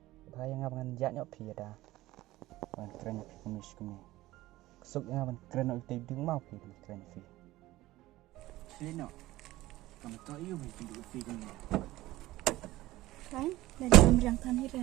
Bahaya ngabangan jaknya pi ada. Ban keren pi kumis kumi. Kesuk ngaban keren oi tei ding mau pi keren pi. Selino. Kamu tahu iyo pi kumi. Kan, dan dalam rangka ni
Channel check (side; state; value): left; quieter; 17.2 dB